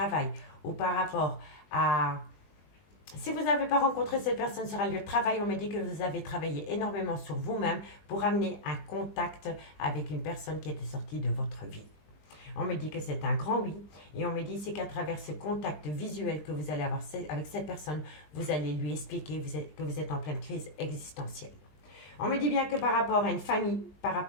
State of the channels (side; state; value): right; late; 20 ms